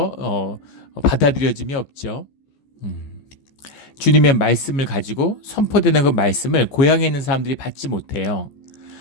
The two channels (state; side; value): late; right; 14 ms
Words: 받아들여짐이 없죠. 주님의 말씀을 가지고 선포되는 그 말씀을 고향에 있는 사람들이 받지 못해요.